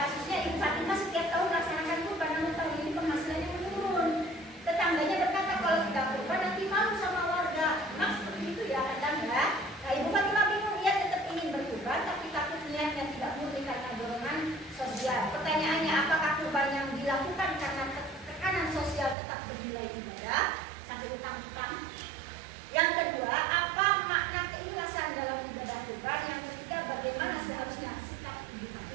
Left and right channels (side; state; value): left; drops out; at 19.2 s